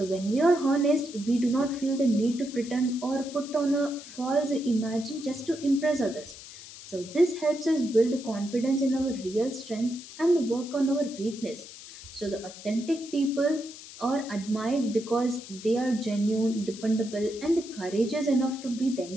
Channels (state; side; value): noise; left; hiss, 15 dB below the sound